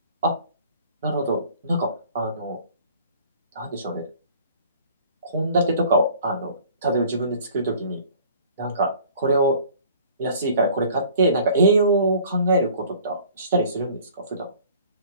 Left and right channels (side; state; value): both; inverted; correlation -0.51